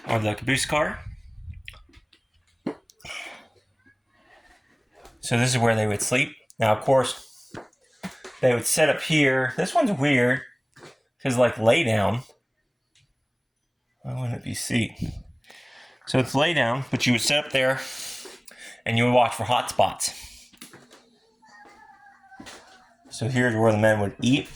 of the caboose car. So this is where they would sleep. Now, of course, they would sit up here. This one's weird because, like, lay down. Why wouldn't it be seat? So it's lay down, but you would sit up there and you would watch for hot spots. So here's where the men would eat.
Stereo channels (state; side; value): identical; both; correlation 1.00